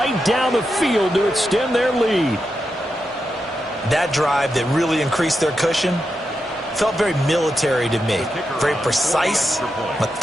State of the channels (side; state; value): both; normal; correlation 0.87